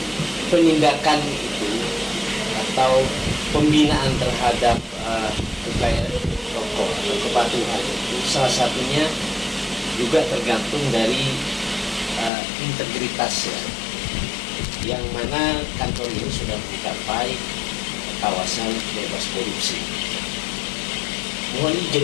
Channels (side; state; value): right; drops out; at 12.3 s